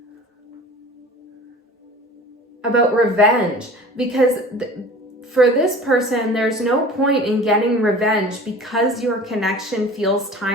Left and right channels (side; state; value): both; normal; correlation 0.41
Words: revenge, because for this person, there's no point in getting revenge because your connection feels